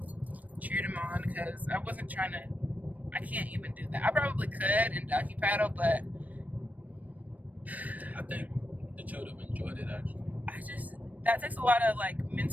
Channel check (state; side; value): late; left; 0.075 ms